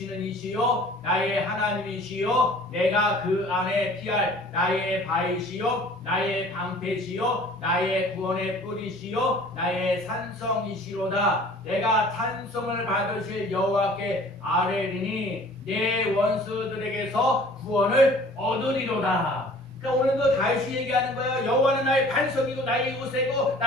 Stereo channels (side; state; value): both; normal; correlation 0.49